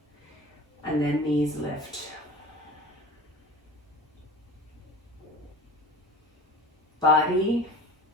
and then knees lift. Body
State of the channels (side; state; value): both; normal; correlation 0.37